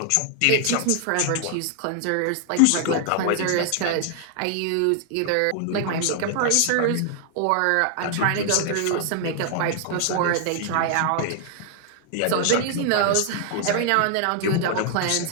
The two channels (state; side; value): different; both; correlation 0.00